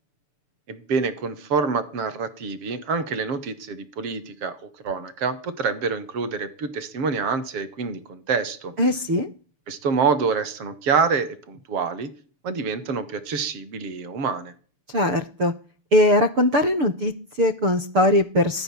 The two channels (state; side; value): late; left; 6.9 ms